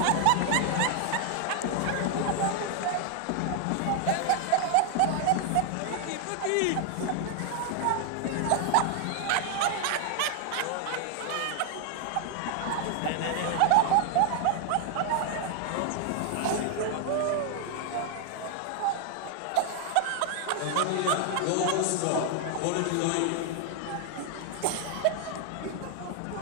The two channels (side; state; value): both; different; correlation 0.01